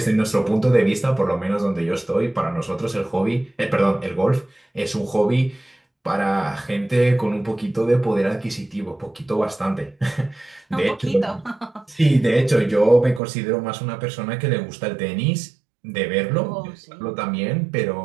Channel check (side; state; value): left; drops out; at 13.2 s